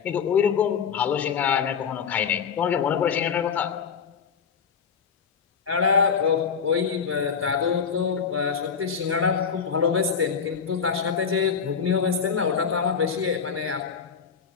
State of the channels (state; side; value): quieter; right; 6.4 dB